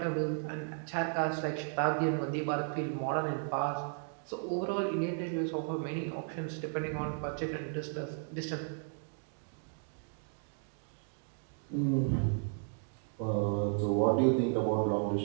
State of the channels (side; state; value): left; silent; 55 dB below the other